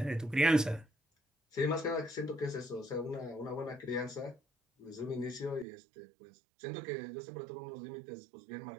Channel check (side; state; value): left; drops out; at 5.7 s